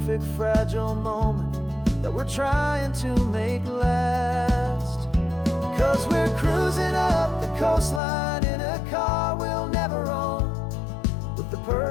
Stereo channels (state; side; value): drops out; right; at 8.0 s